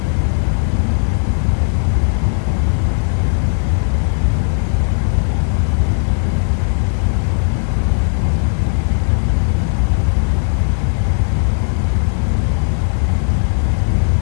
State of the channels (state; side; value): silent; right; 64 dB below the other